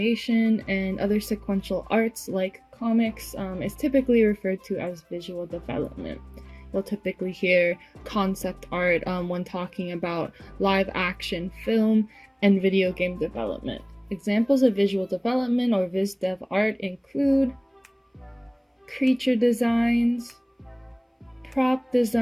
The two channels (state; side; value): identical; both; correlation 1.00